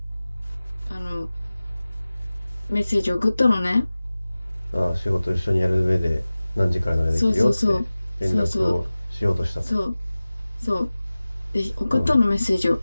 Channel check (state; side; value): inverted; both; correlation -0.97